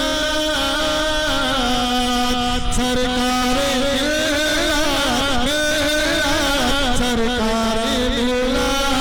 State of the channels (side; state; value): both; identical; correlation 1.00